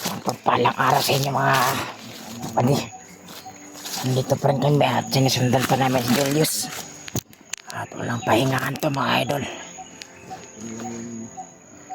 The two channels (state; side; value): identical; both; correlation 1.00